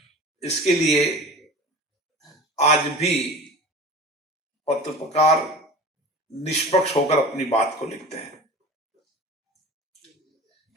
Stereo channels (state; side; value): normal; both; correlation 0.37